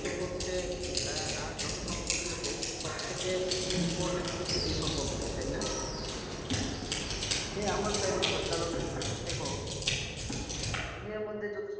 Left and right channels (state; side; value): identical; both; correlation 1.00